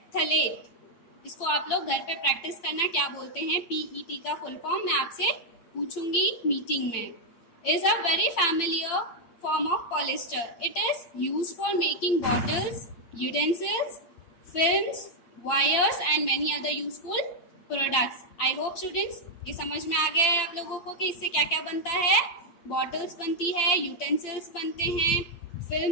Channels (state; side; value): late; right; 8.9 ms